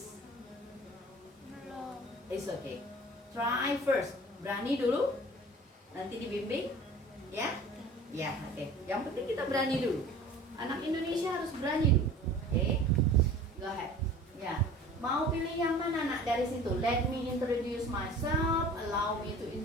Belum. It's okay. Try first. Berani dulu. Nanti dibimbing. Ya? Ya, oke. Yang penting kita berani dulu. Anak Indonesia harus berani dulu. Oke? Go ahead. Ya. Mau pilih yang mana nak dari situ? Let me introduce myself. Allow me to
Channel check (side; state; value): both; normal; correlation 0.44